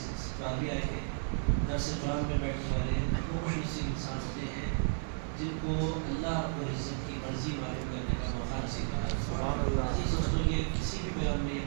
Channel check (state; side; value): silent; left; 56 dB below the other